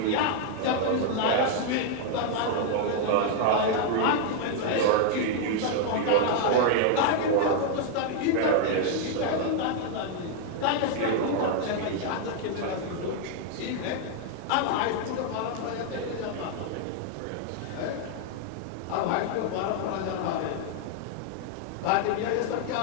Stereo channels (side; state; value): both; different; correlation 0.00